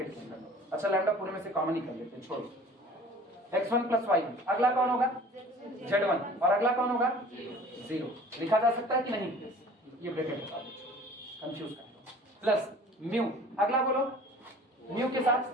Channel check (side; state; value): both; normal; correlation 0.46